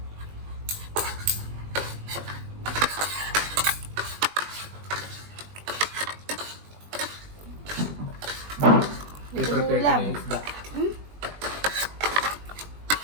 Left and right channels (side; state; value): left; late; 20 ms